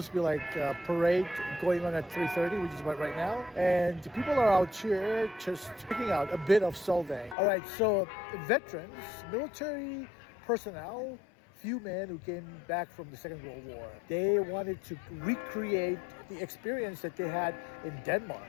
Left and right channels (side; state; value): right; drops out; at 7.4 s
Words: to be like a parade going on at 3:30, which is about right now. And people are out here just checking out a bit of Solvang. All right, so veterans, military personnel, few men who came back from the Second World War. They wanted to recreate the experience that they had in Denmark.